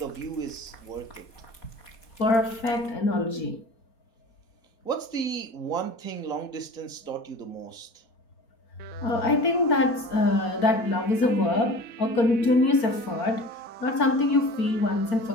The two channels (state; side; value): late; right; 4.4 ms